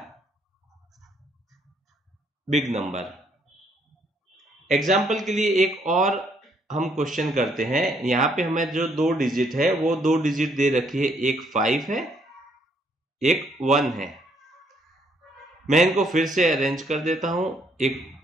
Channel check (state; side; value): normal; both; correlation 0.69